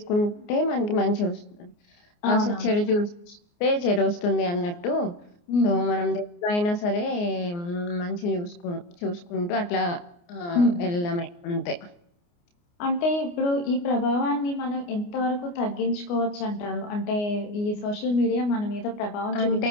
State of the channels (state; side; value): late; right; 29 ms